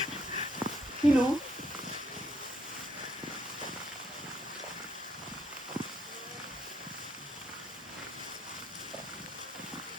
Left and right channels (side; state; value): both; normal; correlation 0.70